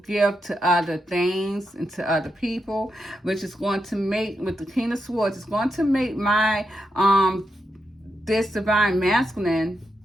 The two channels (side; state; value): both; normal; correlation 0.85